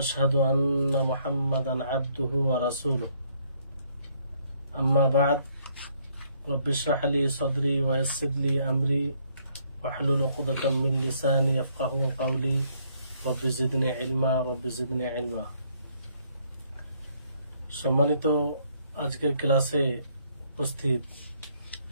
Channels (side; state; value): both; inverted; correlation -0.68